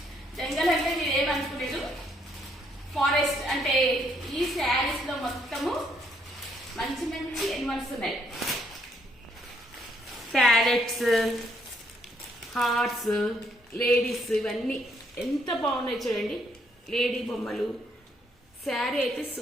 జంగల్ అంటే మీరు ఏమనుకునేది, ఫారెస్ట్ అంటే ఈ శారీస్ లో మొత్తము మంచి మంచి ఎనిమల్స్ ఉన్నాయి. ప్యారెట్స్, హార్ట్స్, లేడీస్, ఇవన్నీ ఎంత బాగున్నాయి చూడండి. లేడీ బొమ్మలు. శారీ అయితే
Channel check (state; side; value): normal; both; correlation 0.70